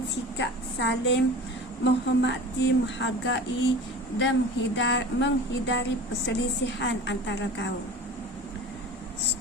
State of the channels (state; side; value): normal; both; correlation 0.37